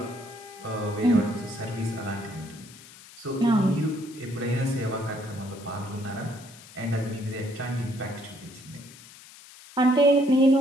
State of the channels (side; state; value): left; noise; hiss, 20 dB below the sound